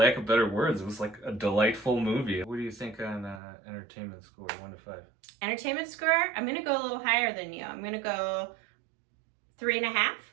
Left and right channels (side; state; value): left; drops out; at 3.4 s